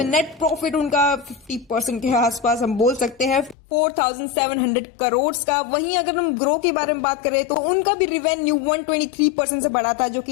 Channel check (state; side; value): drops out; right; at 3.6 s